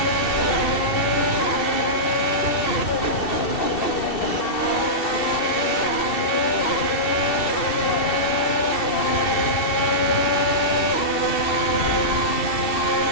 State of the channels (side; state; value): right; late; 2.7 ms